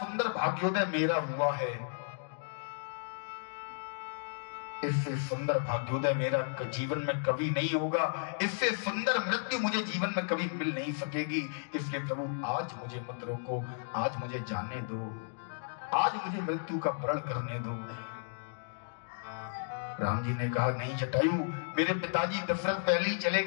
भाग्योदय मेरा हुआ है, इससे सुंदर भाग्योदय मेरा जीवन में कभी नहीं होगा, इससे सुंदर मृत्यु मुझे जीवन में कभी मिल नहीं सकेगी। इसलिए प्रभु आज मुझे मत रोको, आज मुझे जाने दो, आज मुझे मृत्यु का प्रण करने दो। राम जी ने कहा नहीं जटायु, मेरे पिताजी दशरथ पहले ही चले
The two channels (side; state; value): right; silent; digital silence